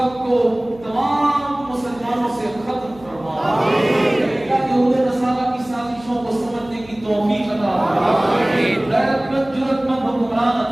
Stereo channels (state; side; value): noise; left; hum, 22 dB below the sound